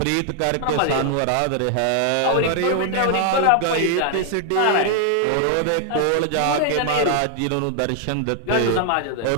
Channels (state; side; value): different; both; correlation 0.00